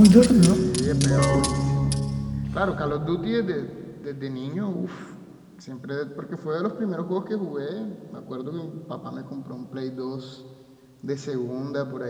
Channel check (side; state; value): both; identical; correlation 1.00